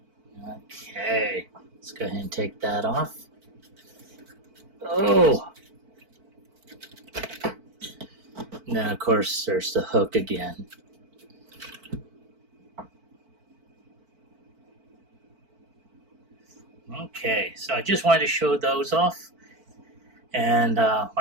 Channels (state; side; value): late; left; 4.5 ms